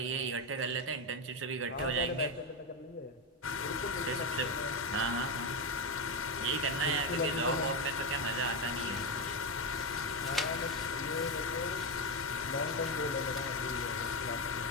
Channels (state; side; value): normal; both; correlation 0.10